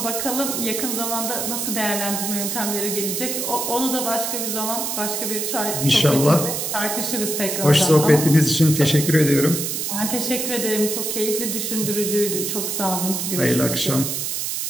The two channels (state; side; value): noise; right; hiss, 2 dB below the sound